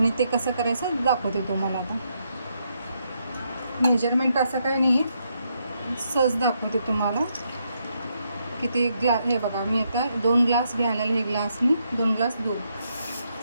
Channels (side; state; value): both; inverted; correlation -0.78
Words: ते कसं करायचं दाखवते तुम्हाला. आता मेजरमेंट असं काही नाही आहे, सहज दाखवते तुम्हाला. किती हे बघा, मी आता 2 ग्लास घ्यायला, हे ग्लासनी 2 ग्लास दूध